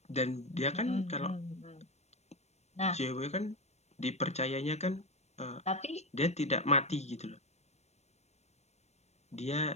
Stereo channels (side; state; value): right; late; 0.32 ms